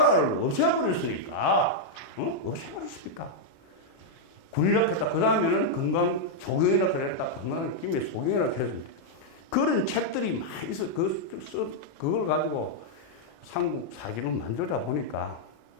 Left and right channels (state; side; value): late; right; 36 ms